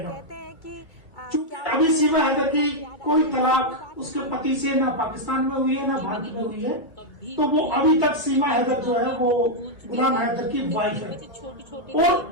चूंकि अभी सीमा हैदर की कोई तलाक उसके पति से ना पाकिस्तान में हुई है ना भारत में हुई है, तो वो अभी तक सीमा हैदर जो है वो गुलाम हैदर की वाइफ है।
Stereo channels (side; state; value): right; late; 2.2 ms